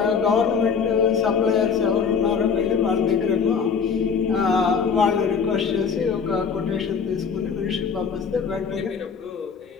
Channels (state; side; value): quieter; right; 6.1 dB